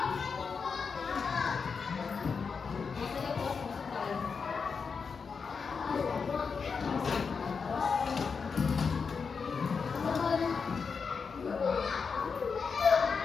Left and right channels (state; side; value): quieter; right; 5.5 dB